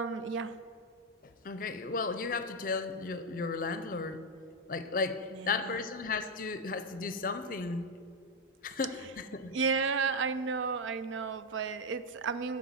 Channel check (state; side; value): normal; both; correlation 0.04